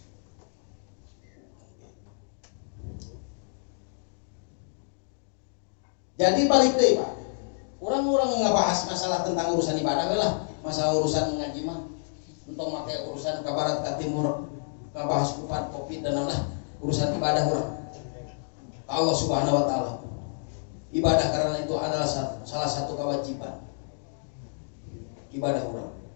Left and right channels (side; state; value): right; silent; digital silence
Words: Jadi balik deh Pak. Orang-orang ngebahas masalah tentang urusan ibadah lah, masalah urusan ngaji mah. Untuk pakai urusan ke barat ke timur, ngebahas kupat covid dan lain-lain, urusan ibadah orang. Allah Subhanahu wa taala. Ibadah karena itu adalah salah satu kewajiban. Ibadah orang.